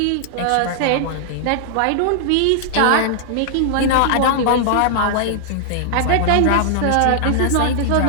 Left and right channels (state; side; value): different; both; correlation -0.01